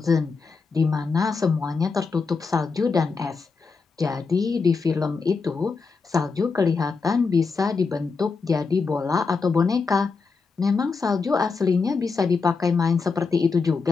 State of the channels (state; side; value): quieter; right; 4.7 dB